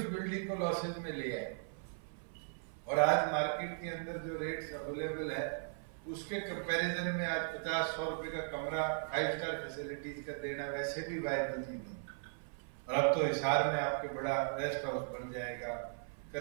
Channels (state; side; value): silent; left; 53 dB below the other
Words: बिल्डिंग को लॉसेज में ले आए। और आज मार्केट के अंदर जो रेट्स अवेलेबल है उसके कंपैरिजन में आज 50-100 रुपए का कमरा 5 स्टार फैसिलिटीज का देना वैसे भी वायबल नहीं। और अब तो हिसार में आपके बड़ा रेस्ट हाउस बन जाएगा,